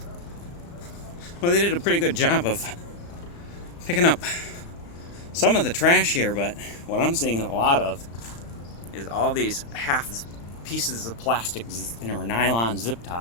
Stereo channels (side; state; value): right; late; 35 ms